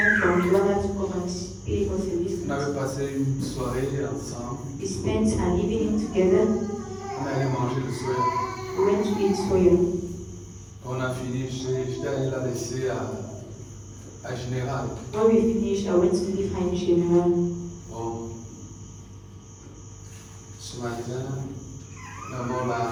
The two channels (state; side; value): identical; both; correlation 1.00